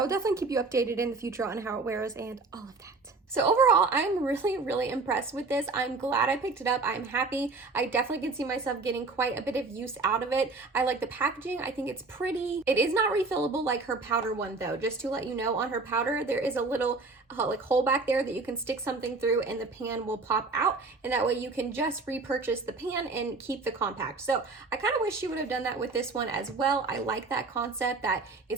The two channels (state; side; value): quieter; left; 3.8 dB